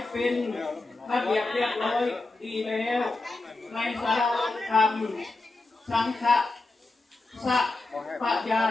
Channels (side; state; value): right; quieter; 3.3 dB